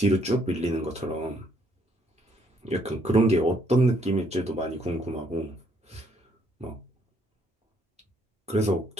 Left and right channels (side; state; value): both; normal; correlation 0.69